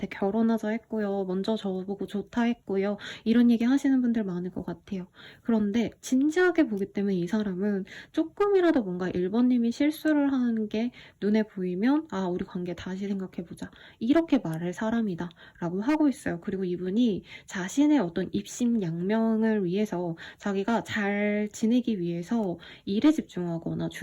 결혼하자 했고요. 먼저 저보고 좋다 했고요. 이런 얘기 하시는 분들 많을 것 같아요. 그런데 진지하게 보기 때문에 이 사람은 조금이라도 뭔가 1번님이 실수를 하는 게 눈에 보이면 아 우리 관계 다시 생각해보자. 이렇게 말할 사람이다 라고 하고 있어요. 그리고 이분이 자신의 어떤 입심양명을 위해서 자기가 잘 지내기 위해서 일에 집중하거나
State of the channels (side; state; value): both; identical; correlation 1.00